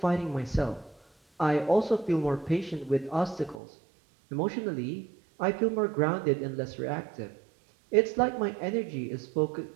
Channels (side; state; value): left; drops out; at 3.6 s